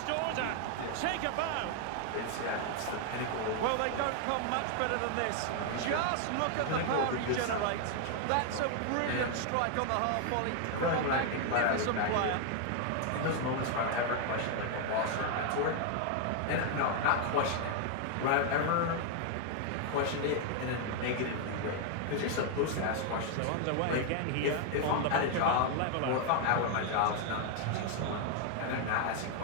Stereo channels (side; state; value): both; different; correlation 0.00